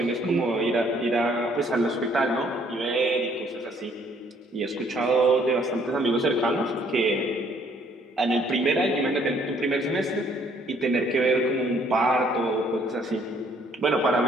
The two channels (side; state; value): both; normal; correlation 0.63